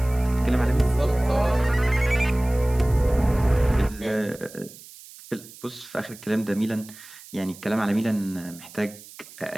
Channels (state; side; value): noise; right; hiss, 19 dB below the sound